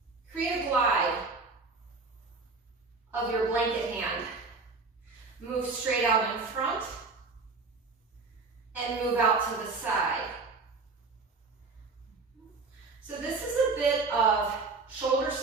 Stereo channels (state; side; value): quieter; left; 4.1 dB